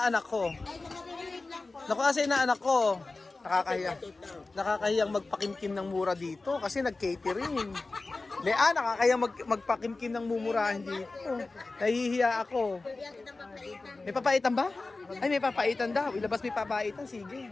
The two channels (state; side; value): quieter; right; 3.5 dB